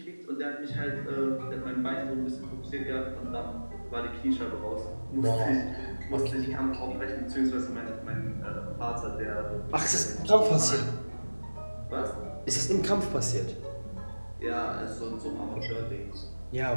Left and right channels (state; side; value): inverted; both; correlation -1.00